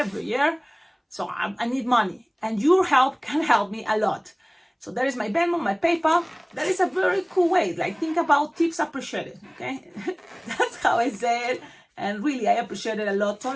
year, so I need money. And your help can help me a lot. So that is my Venmo, my PayPal. That is a very cool way. Like, think about tips appreciated, okay? That's how I say it. And really, I appreciate it a lot.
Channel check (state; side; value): identical; both; correlation 1.00